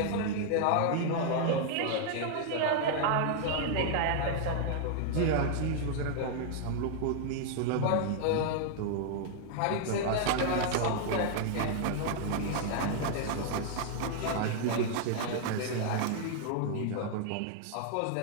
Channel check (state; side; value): different; both; correlation 0.00